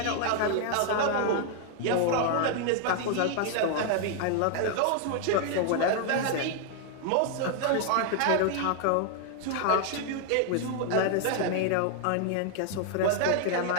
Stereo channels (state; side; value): different; both; correlation 0.00